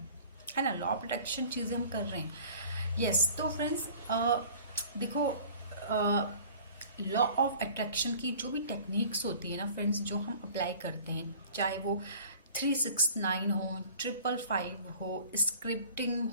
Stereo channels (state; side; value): inverted; both; correlation -0.47